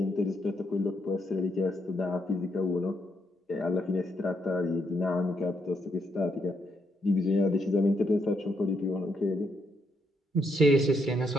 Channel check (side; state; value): both; normal; correlation 0.76